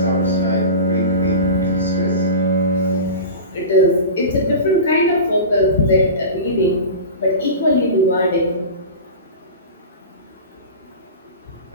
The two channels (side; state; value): both; inverted; correlation -0.31